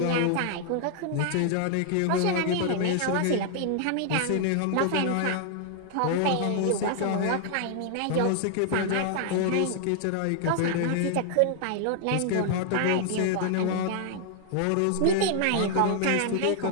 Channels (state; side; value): different; both; correlation 0.00